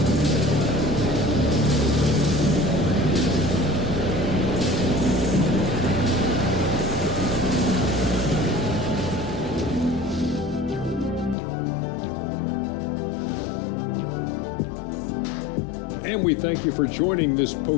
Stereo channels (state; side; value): drops out; right; at 11.4 s